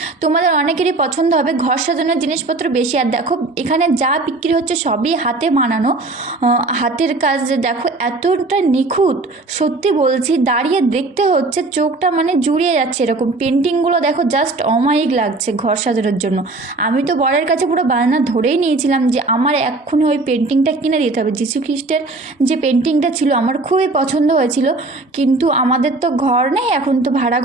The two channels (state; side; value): quieter; left; 3.2 dB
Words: তোমাদের অনেকেরই পছন্দ হবে। ঘর সাজানোর জিনিসপত্র বেশি। আর দেখো এখানে যা বিক্রি হচ্ছে সবই হাতে বানানো, হাতের কাজ। দেখো এতটা নিখুঁত, সত্যি বলছি, দাঁড়িয়ে দেখতে হচ্ছে, চোখটা মানে জুড়িয়ে যাচ্ছে। এরকম পেন্টিংগুলো দেখো জাস্ট অমায়িক লাগছে ঘর সাজানোর জন্য। আমি তো বরের কাছে পুরো বায়না ধরেই নিয়েছিলাম যে আমার এক্ষুনি ওই পেন্টিংটা কিনে দিতে হবে। যীশু খ্রিস্টের যে পেন্টিংটা ছিল আমার খুবই পছন্দ হয়েছিল, কিন্তু আমাদের তো ঘর নেই, এখন তো ভাড়া